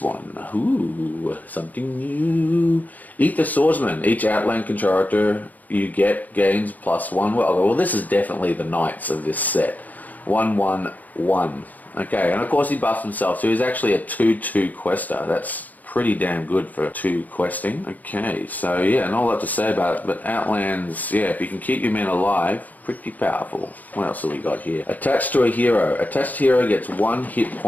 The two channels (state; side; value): late; right; 0.080 ms